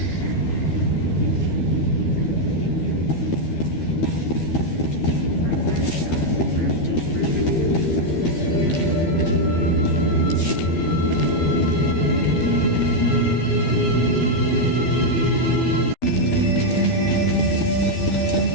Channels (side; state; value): right; late; 12 ms